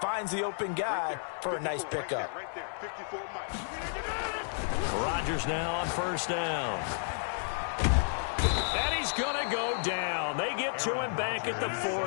the open guy for a nice pickup. Rodgers now on 1st down. And he's going to go down. They get to him back at the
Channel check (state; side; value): silent; right; digital silence